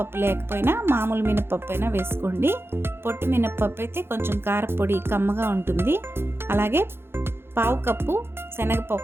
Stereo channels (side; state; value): left; late; 0.11 ms